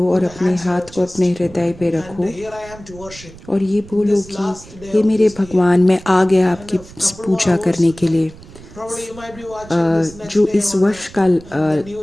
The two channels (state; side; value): noise; right; rumble, 19 dB below the sound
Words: और अपने हाथ को अपने हृदय पे रखो और ये बोलो कि हे मेरे भगवान, मैं आ गया आपकी पूजा करने के लिए। जो इस वर्ष का